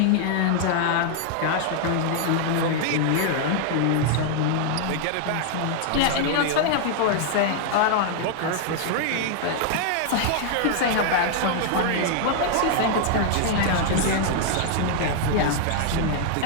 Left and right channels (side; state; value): both; different; correlation 0.00